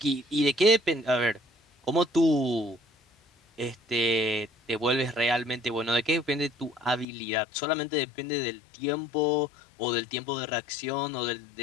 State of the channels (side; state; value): right; drops out; at 7.1 s